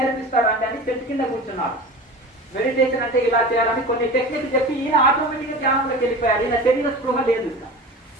అని చెట్టు కింద కూర్చున్నారు. మెడిటేషన్ అంటే ఇలా చేయాలని కొన్ని టెక్నిక్ చెప్పి ఈయన ఆటోమేటిక్గా ధ్యానంలోకి వెళ్ళిపోయారు. ఈయన శరీర స్పృహ లేదు.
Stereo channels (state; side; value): normal; both; correlation 0.33